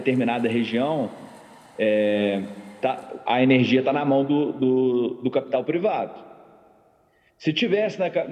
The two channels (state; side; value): identical; both; correlation 1.00